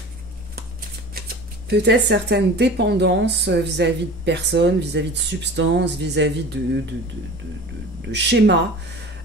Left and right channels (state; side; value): normal; both; correlation 0.38